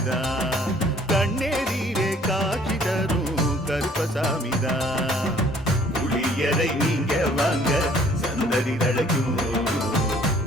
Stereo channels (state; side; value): normal; both; correlation 0.57